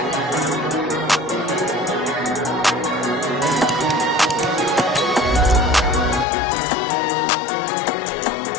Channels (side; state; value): right; drops out; at 6.2 s